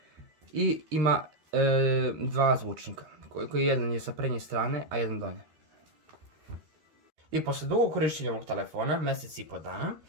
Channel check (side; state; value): left; late; 13 ms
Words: i ima dva zvučnika, koji jedan je sa prednje strane, a jedan donje. I posle dugog korištenja ovog telefona, mjesec i po dana,